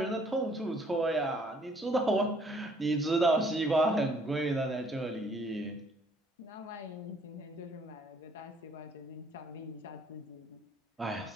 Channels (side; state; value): both; normal; correlation 0.62